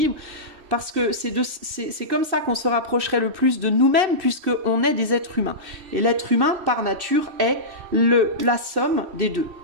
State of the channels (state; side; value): late; left; 2.6 ms